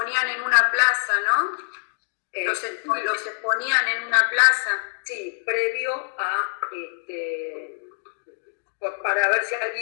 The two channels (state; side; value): silent; right; 57 dB below the other